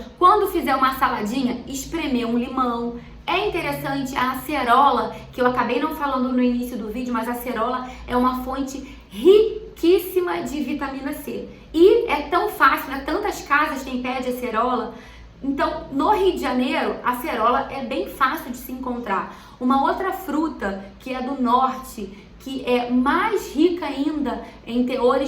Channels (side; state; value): both; identical; correlation 1.00